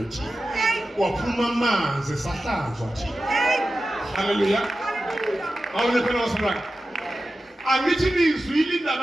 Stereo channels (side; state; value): both; normal; correlation 0.93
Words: thina waphuma amanzi esahlanzwa thina haleluya awune phela wasibaka angithi nizwile